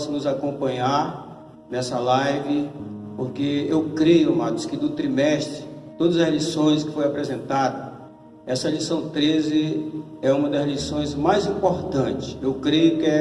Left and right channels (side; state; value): both; identical; correlation 1.00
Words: nos acompanhar nessa live, porque eu creio, amados, que do trimestre, todas as lições que foi apresentada, essa lição 13 é uma das lições mais importantes. Eu creio que